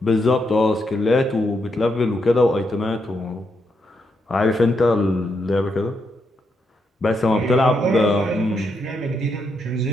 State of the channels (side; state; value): both; normal; correlation 0.80